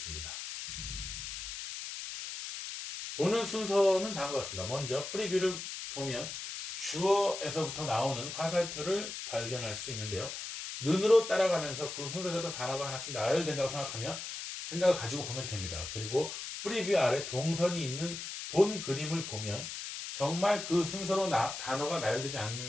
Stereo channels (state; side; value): noise; left; hiss, 7 dB below the sound